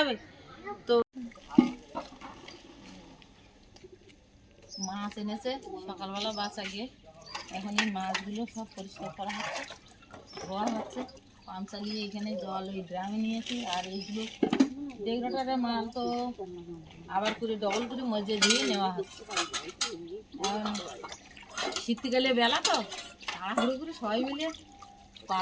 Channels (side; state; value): both; identical; correlation 1.00